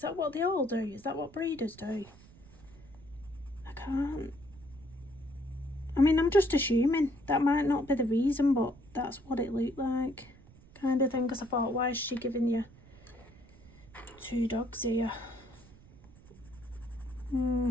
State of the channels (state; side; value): noise; right; rumble, 23 dB below the sound